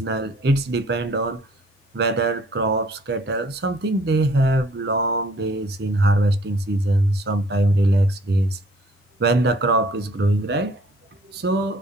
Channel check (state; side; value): normal; both; correlation 0.58